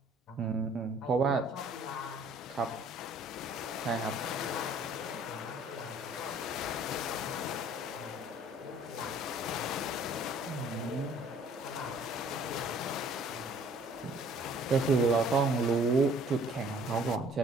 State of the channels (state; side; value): normal; both; correlation 0.55